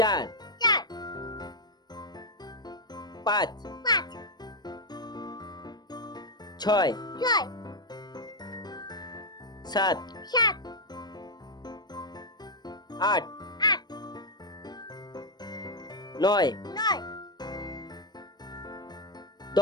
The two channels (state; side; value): late; right; 0.20 ms